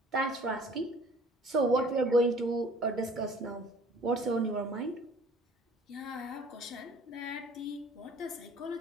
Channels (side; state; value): both; normal; correlation 0.51